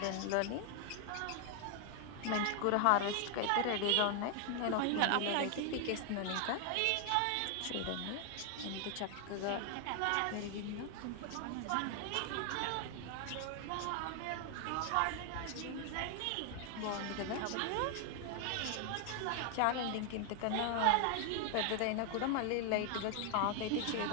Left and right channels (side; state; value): both; different; correlation 0.00